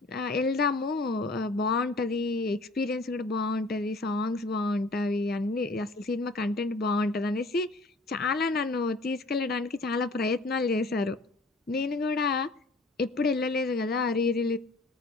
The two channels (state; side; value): quieter; right; 3.0 dB